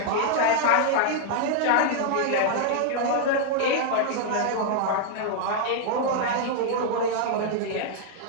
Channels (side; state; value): both; different; correlation -0.01